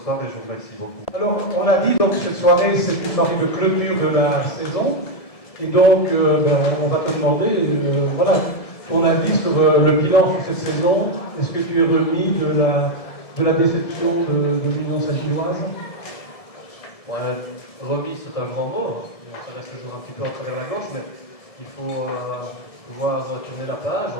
soir, et je vous remercie beaucoup. Alors, on a dit donc cette soirée, c'est une soirée de clôture de la saison, et donc on va te demander, voilà, ton avis sur le bilan sur cette saison. Est-ce que tu es remis de la déception de l'Union Saint-Gilloise? Ouais, remis, c'est un grand mot. Ça reste toujours un petit peu en travers la gorge, mais il faut pouvoir tourner la page,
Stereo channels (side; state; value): right; late; 1.7 ms